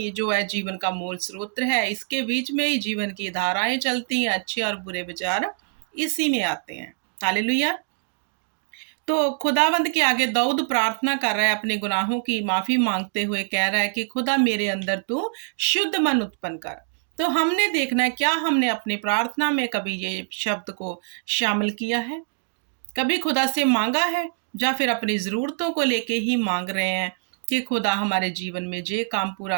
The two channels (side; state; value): left; silent; 59 dB below the other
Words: जो है जीवन का मूल स्रोत है, इसके बीच में ही जीवन की धाराएं चलती हैं, अच्छे और बुरे विचार इसी में आते हैं। हालेलुया। तो खुदावंद के आगे दाऊद प्रार्थना कर रहा है, अपने गुनाहों की माफी मांगते हुए कह रहा है कि खुदा मेरे अंदर तू शुद्ध मन उत्पन्न कर। तो हमने देखना है, क्या हमने अपनी प्रार्थना में कभी ये शब्द को शामिल किया है? कभी खुदा से मांगा है? या फिर अपनी ज़रूरतों को लेके ही मांग रहे हैं कि खुदा हमारे जीवन में ये काम पूरा